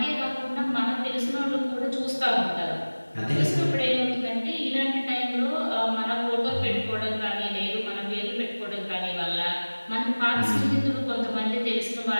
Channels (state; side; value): inverted; both; correlation -1.00